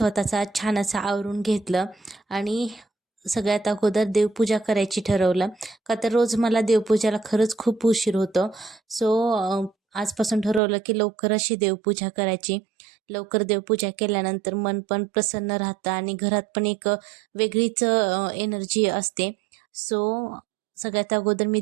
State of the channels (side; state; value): left; drops out; at 10.6 s